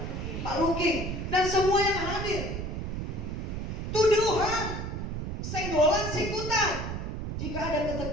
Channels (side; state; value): right; noise; rumble, 4 dB below the sound